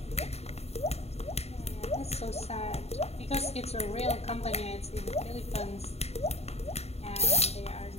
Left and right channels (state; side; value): late; right; 0.30 ms